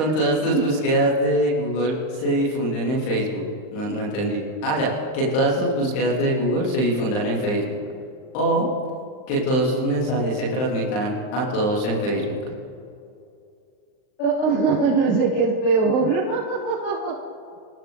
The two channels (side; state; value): right; late; 39 ms